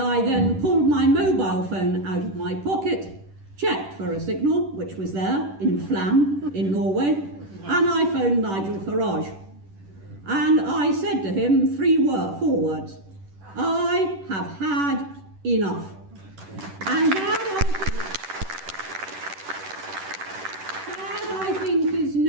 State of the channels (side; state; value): left; late; 10 ms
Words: I then pulled my mobile phone out of my pocket, checked for a signal, which was there in Flam in Norway, and I phoned Nigel Farage. And I said to him four words: I have had enough. And that I think is